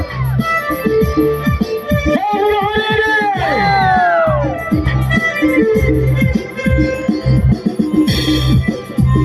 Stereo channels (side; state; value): both; identical; correlation 1.00